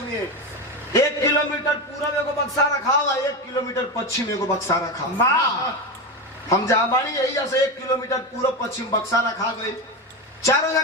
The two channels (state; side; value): normal; both; correlation 0.17